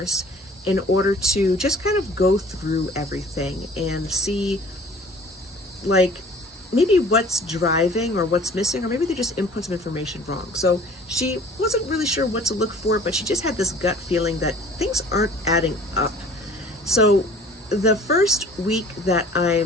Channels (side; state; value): both; normal; correlation 0.49